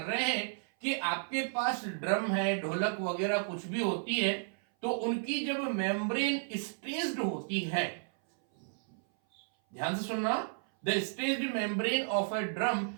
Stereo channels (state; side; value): silent; left; 56 dB below the other